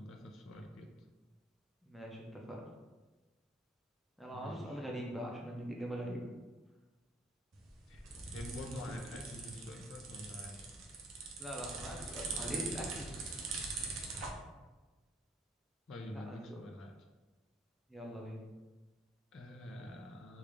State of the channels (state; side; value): normal; both; correlation 0.62